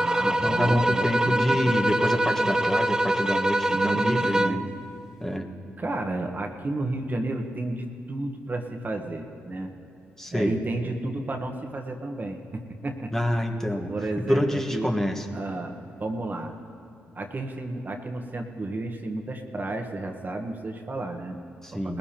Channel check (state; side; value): normal; both; correlation 0.92